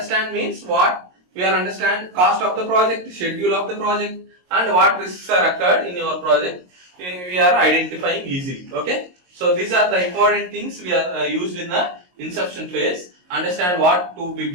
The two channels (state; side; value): late; left; 22 ms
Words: means what we are understand cost of the project, schedule of the project, and what risks are occurred in your project, we are identifying easily. Okay, so these are the important things we are used in the inception phase. Understand what to be